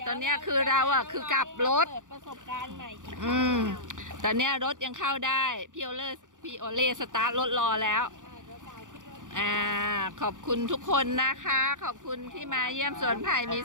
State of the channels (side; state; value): left; late; 0.87 ms